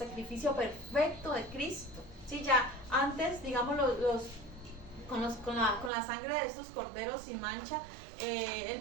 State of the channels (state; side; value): drops out; left; at 5.9 s